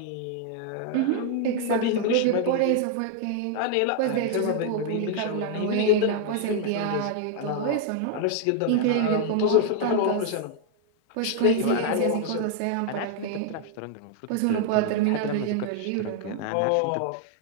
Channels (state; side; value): different; both; correlation 0.00